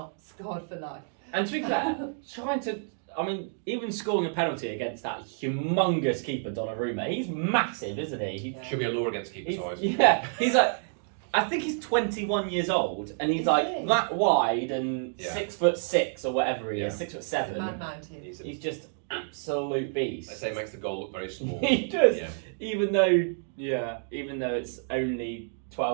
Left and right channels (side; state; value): left; silent; digital silence